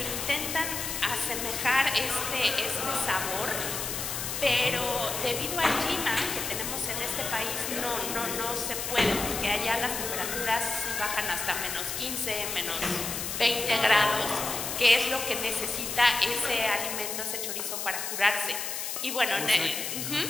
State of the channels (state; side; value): noise; left; hiss, 4 dB below the sound